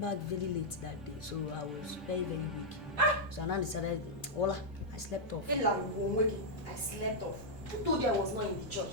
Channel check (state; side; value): noise; right; rumble, 29 dB below the sound